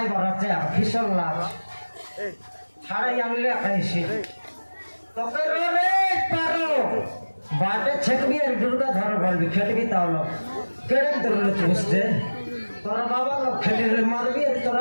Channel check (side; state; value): both; inverted; correlation -1.00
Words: বাড়াচ্ছে আর ফিসল লাচ ছাড়াই আনলে খাইছি তোকে রে পারো বাটে ছেকবি আর দুর্গা ধর বলবি খেলবি তাহলে কেড়ে ধরলে বুঝতে তোরা বাবা লোক খেলিলে মারবি আর